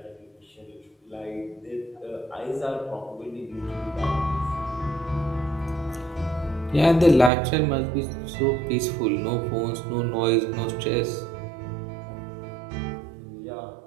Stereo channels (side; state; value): left; drops out; at 7.3 s